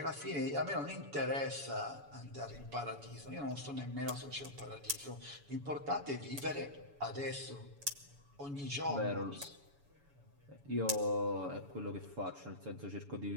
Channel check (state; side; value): late; left; 7.0 ms